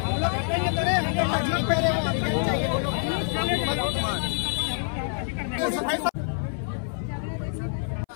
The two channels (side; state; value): right; silent; 59 dB below the other